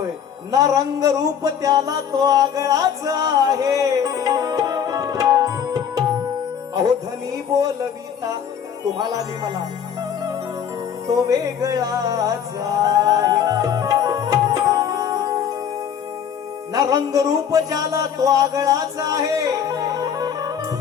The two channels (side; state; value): right; quieter; 8.2 dB